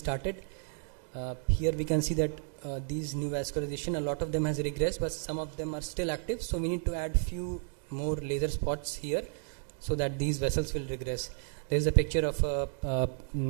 Here we can see that these neovascularization, a lot of them has regressed, but some of them are still active, so we need to add few more laser spots here so that these vessels will regress. There is a picture of a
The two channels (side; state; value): left; silent; 56 dB below the other